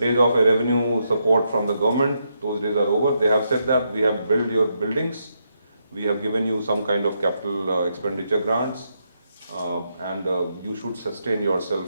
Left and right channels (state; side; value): inverted; both; correlation -0.80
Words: of a revenue support from the government, those days are over. They have said that we have built your buildings, we have given you some kind of capital expenditure grants, and you should sustain yourself